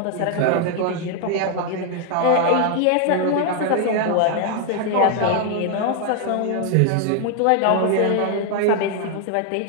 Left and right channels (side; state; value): both; different; correlation 0.00